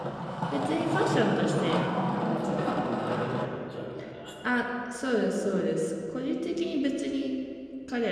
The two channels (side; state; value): both; identical; correlation 1.00